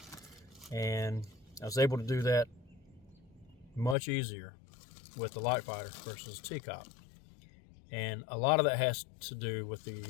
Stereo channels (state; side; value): drops out; right; at 4.0 s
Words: and I was able to do that much easier with the LiteFighter versus TCOP. And a lot of that has to do with